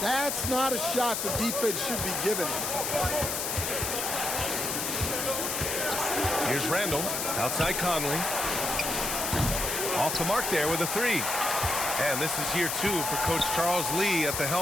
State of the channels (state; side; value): noise; left; hiss, 1 dB below the sound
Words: not a shot the defense should be giving him. Here's Randall. Outside Conley. Off the mark there with a 3. And this is year 2 for Coach Charles Lee at the